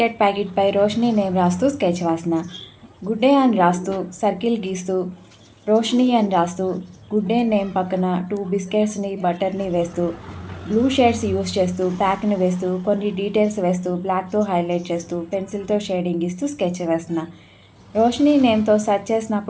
ప్యాకెట్పై Roshini name రాస్తూ sketch వాసన. Good day అని రాస్తూ సర్కిల్ గీస్తూ రోషిని అని రాస్తూ గుడ్ డే నేమ్ పక్కన 2 బిస్కెట్స్ని బటర్ని వేస్తూ బ్లూ షేడ్స్ యూస్ చేస్తూ ప్యాక్ని వేస్తూ కొన్ని డీటెయిల్స్ వేస్తూ బ్లాక్తో హైలైట్ చేస్తూ పెన్సిల్తో షేడింగ్ ఇస్తూ స్కెచ్ వేస్తున్నా. రోషిని నేమ్తో సెర్చ్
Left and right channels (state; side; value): identical; both; correlation 1.00